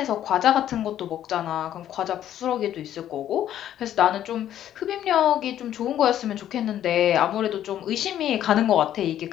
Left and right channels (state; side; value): quieter; right; 11.4 dB